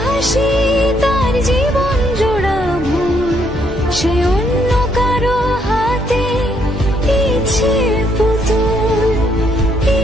হাসি, তার জীবন জোড়া ভুল, সে অন্য কারো হাতে ইচ্ছে পুতুল,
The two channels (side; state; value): both; normal; correlation 0.71